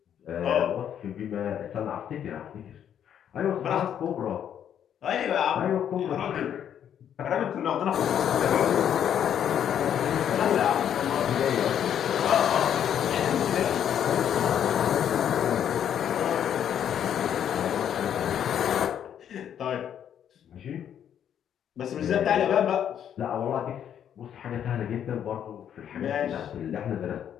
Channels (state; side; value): quieter; right; 9.4 dB